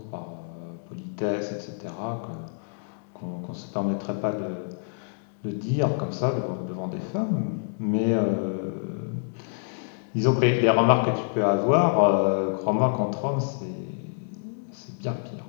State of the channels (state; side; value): silent; right; digital silence